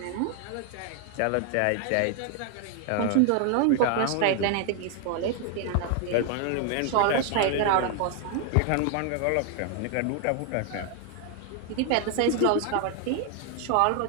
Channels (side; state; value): both; different; correlation 0.00